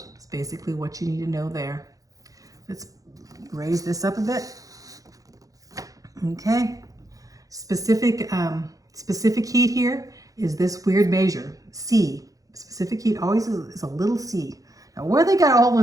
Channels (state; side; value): late; left; 0.17 ms